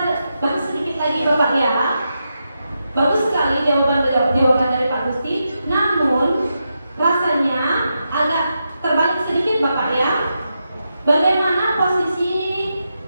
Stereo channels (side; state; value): both; inverted; correlation -0.86